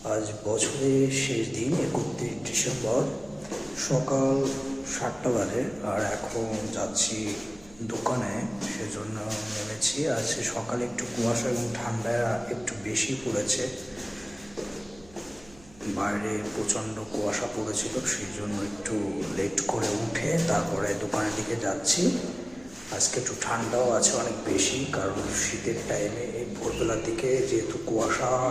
দিন 31 ডিসেম্বর, সকাল 7টা বাজে। আর এখন যাচ্ছি দোকানে, সেজন্য নেমেছি। আজকে সকালে একটু কুয়াশা এবং ঠান্ডা একটু বেশি পড়েছে, বাইরে প্রচণ্ড কুয়াশা পড়েছিল, সেই জন্য একটু লেট করে উঠে তারপরে দোকানের দিকে যাচ্ছি। আজকে একটু ঠান্ডাও আছে অনেক বেশি, কারণ শীতের টাইমে এই ভোরবেলার দিকে যেহেতু কুয়াশা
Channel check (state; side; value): noise; right; hum, 24 dB below the sound